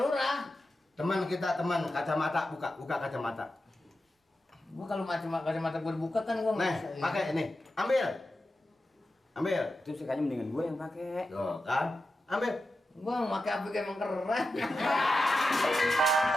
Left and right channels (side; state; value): both; normal; correlation 0.91